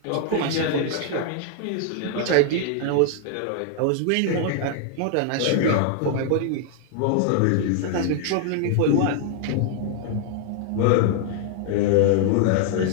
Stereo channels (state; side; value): different; both; correlation 0.00